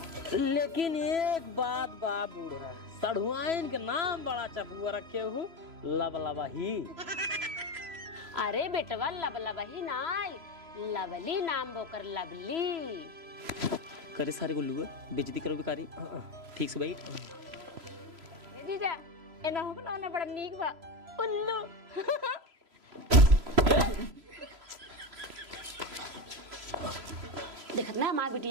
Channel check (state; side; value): late; left; 3.0 ms